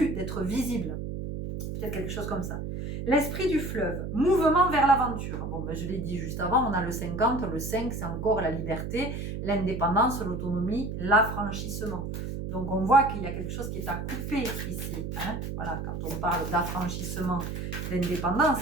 d'être visible. Peut-être quelque chose comme ça. L'esprit du fleuve, mouvement vers l'aventure. Bon, je l'ai dit juste avant, on a le 50, le 5, c'est encore la liberté, l'indépendance, l'autonomie, l'affranchissement. Donc, on voit qu'il y a quelque chose qui est à couper ici. Hein, voilà, quand on parle d'affranchissement,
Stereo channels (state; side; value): noise; right; hum, 5 dB below the sound